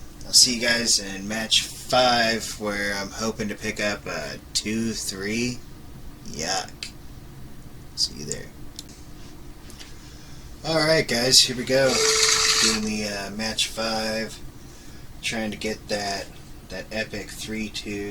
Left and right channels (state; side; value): identical; both; correlation 1.00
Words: I'll see you guys in match 5, where I'm hoping to pick up a 2-3. Yuck. See you there. Alright guys, here we go. Doing the match 5. Trying to get that epic